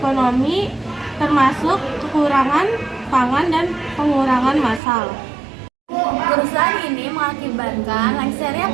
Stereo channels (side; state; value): left; drops out; at 4.8 s